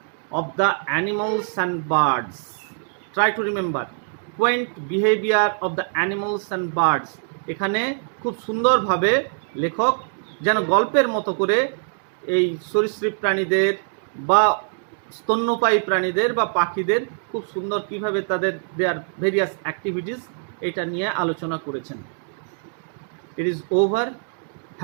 of the animals and birds. Try to remember, quaint behavior of the animals and birds. এখানে খুব সুন্দরভাবে লেখক যেন গল্পের মতো করে এই সরীসৃপ প্রাণীদের বা স্তন্যপায়ী প্রাণীদের বা পাখিদের খুব সুন্দর কিভাবে তাদের দেয়ার ভেরিয়াস অ্যাক্টিভিটিস এটা নিয়ে আলোচনা করেছেন। It is over.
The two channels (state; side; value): silent; left; digital silence